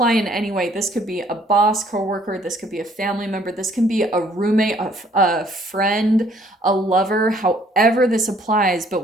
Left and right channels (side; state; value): both; normal; correlation 0.62